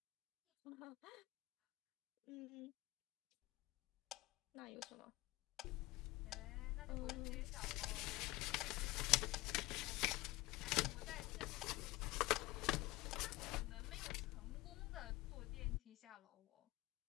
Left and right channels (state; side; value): quieter; right; 19.7 dB